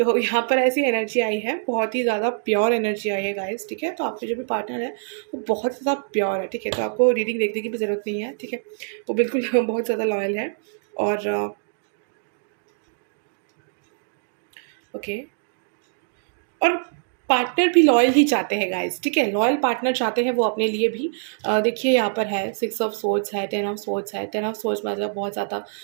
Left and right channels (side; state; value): left; silent; digital silence